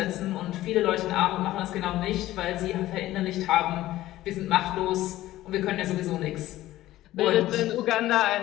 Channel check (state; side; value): quieter; right; 15.4 dB